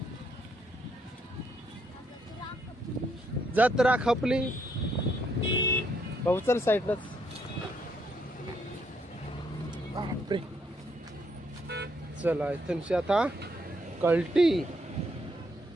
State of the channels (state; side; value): normal; both; correlation 0.73